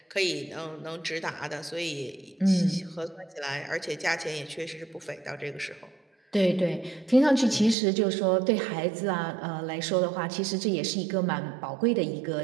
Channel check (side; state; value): left; drops out; at 7.8 s